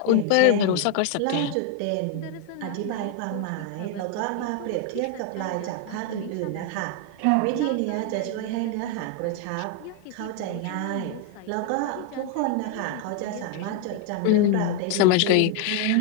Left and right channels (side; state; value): both; different; correlation 0.00